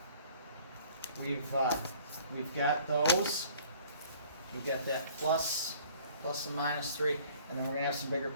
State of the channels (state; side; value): inverted; both; correlation -0.53